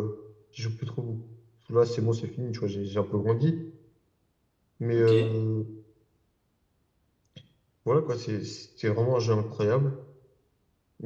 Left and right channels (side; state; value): both; identical; correlation 1.00